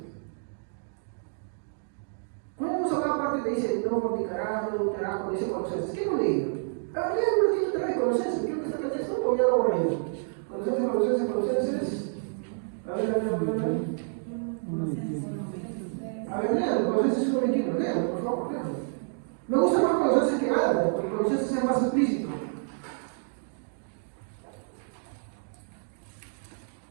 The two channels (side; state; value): left; silent; digital silence